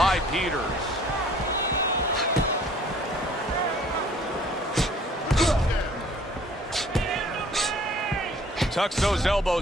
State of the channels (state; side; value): normal; both; correlation 0.54